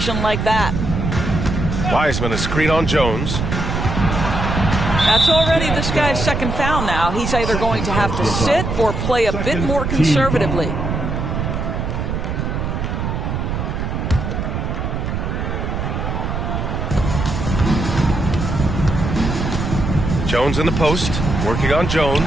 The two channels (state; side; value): noise; right; rumble, 2 dB below the sound